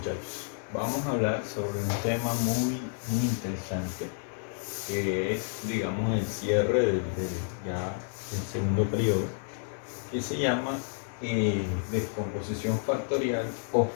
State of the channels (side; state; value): right; silent; 58 dB below the other